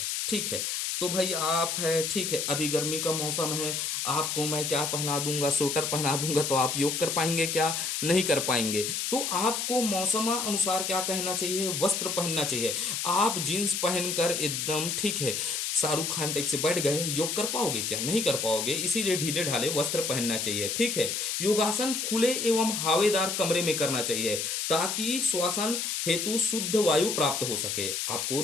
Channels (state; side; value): noise; left; hiss, 1 dB below the sound